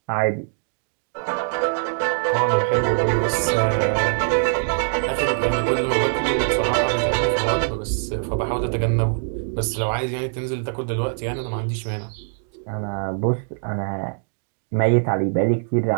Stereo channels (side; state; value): left; silent; digital silence